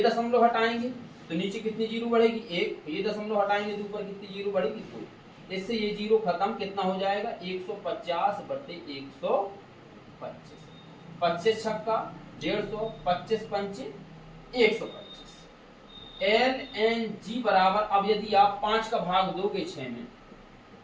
दशमलव हटाएंगे तो नीचे कितनी जीरो बढ़ेगी 1, ये दशमलव हटाएंगे तो ऊपर कितनी जीरो बढ़ेगी 2, इससे ये जीरो खत्म, कितना हो जाएगा 150 बटे 125, 25 छक्का 150, 25 पंचे 125। LNG बराबर, अब यदि आप 5 का भाग दोगे 6 में,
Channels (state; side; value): identical; both; correlation 1.00